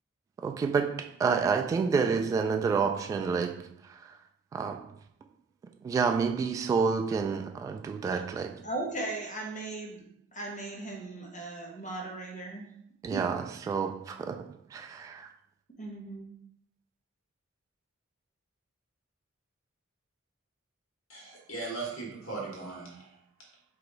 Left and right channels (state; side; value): quieter; left; 4.8 dB